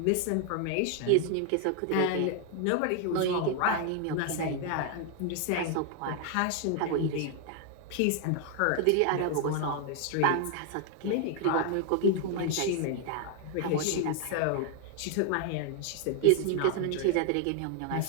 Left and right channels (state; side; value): different; both; correlation 0.00